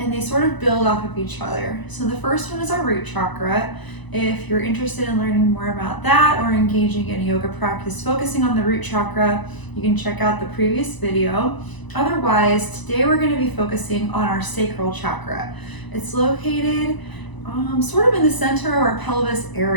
and they sort of build off of each other. So the first one is our root chakra. If you're interested in learning more about that or engaging in a yoga practice focusing on the root chakra, you can check out the previous video. Otherwise, today we're going to be focusing on our sacral chakra. It's located sort of in the center of our pelvis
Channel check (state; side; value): late; right; 1.0 ms